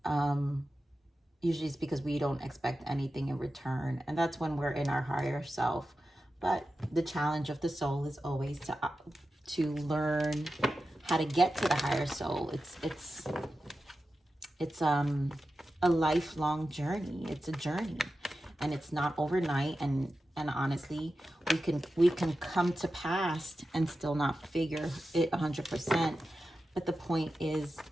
usually it's because we don't expect anything in return. And that's when we're in our higher self. But the challenge of the soul is always to learn how to get to the higher soul. It's a lifelong journey. It's a journey, and it's not overnight. And honestly, we can come to pass and still not figure it 100%. But the point is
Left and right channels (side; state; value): both; normal; correlation 0.92